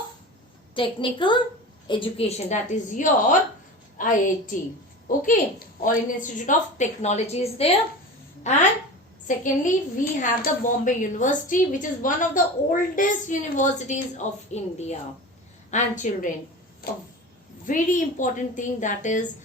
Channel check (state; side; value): normal; both; correlation 0.32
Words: Technical Education, that is your IIT. Okay, All India Institute of Technology is there. And secondly, we have the Bombay University, which is one of the oldest universities of India. And children, a very important thing that is